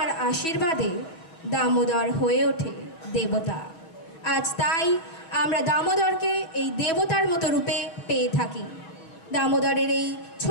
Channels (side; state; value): right; late; 6.1 ms